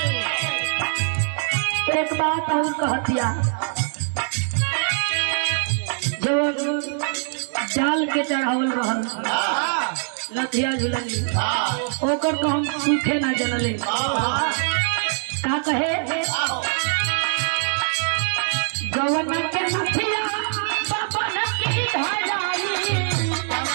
एक बात और कह दिया जो जाल के चढ़ावल रहल लथिया झुलनी ओकर तो हम सूखे ना जनले का कहे गवन के नथिया बबन की धराई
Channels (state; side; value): silent; left; digital silence